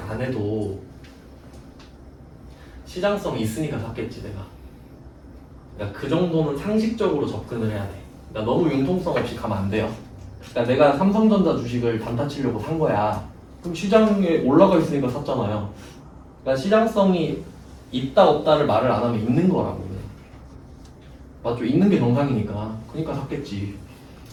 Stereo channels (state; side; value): identical; both; correlation 1.00